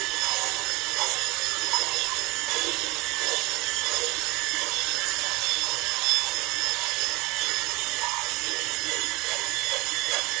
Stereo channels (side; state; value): left; quieter; 24.0 dB